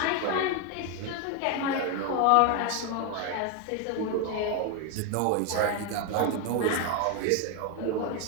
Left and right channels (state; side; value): different; both; correlation 0.01